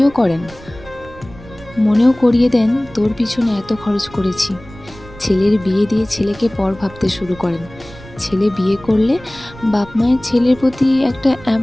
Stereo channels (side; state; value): right; noise; rumble, 19 dB below the sound